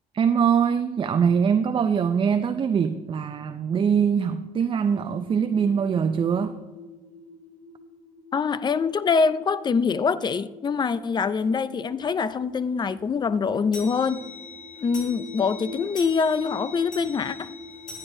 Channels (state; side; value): normal; both; correlation 0.61